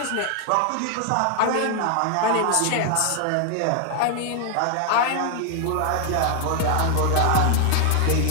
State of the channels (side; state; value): both; different; correlation 0.00